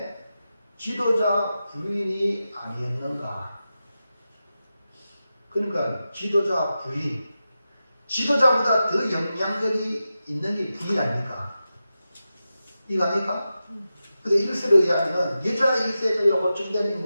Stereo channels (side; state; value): both; inverted; correlation -0.92